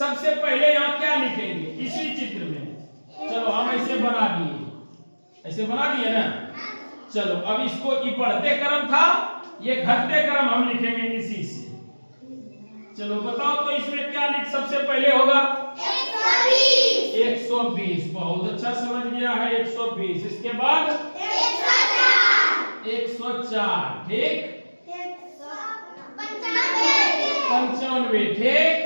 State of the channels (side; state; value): both; inverted; correlation -1.00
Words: पहले यहाँ क्या लिखेंगे इसी चित्र में? चलो हम ऐसे बना दिए, ऐसे बना दिए ना। चलो अब इसको ये बढ़ते क्रम था, ये घटते क्रम हम लिखेंगे इसी से। चलो बताओ तो इसमें क्या लिख सबसे पहले होगा? 120। बहुत अच्छा समझ गया है। 120। इसके बाद 104। ठीक। 95।